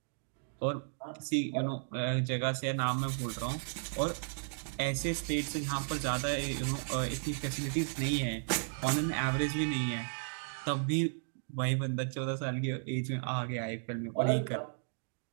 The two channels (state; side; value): silent; left; digital silence